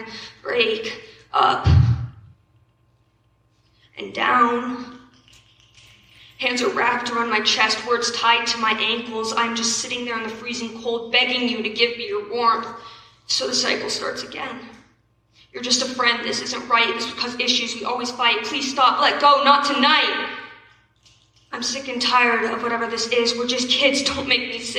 break. Up and down. Hands are wrapped around my chest, words tied to my ankles. I'm just sitting there in the freezing cold, begging you to give me your warmth. So the cycle starts again. You're just a friend. This isn't right. This will cause issues. We always fight. Please stop. Let go. Not tonight. I'm sick and tired of whatever this is. We're just kids. Don't make me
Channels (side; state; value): both; identical; correlation 1.00